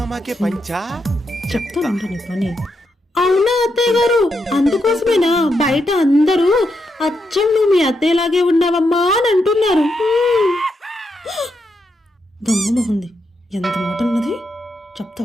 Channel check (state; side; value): normal; both; correlation 0.82